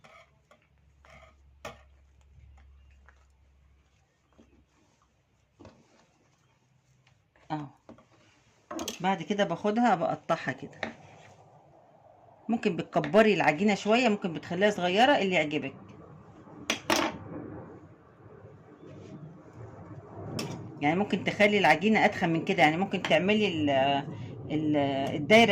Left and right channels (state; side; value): identical; both; correlation 1.00